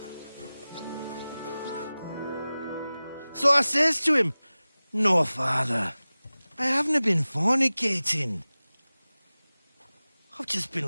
So I says to him, "No, father, I haven't been fornicating. I've just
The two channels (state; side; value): inverted; both; correlation -0.97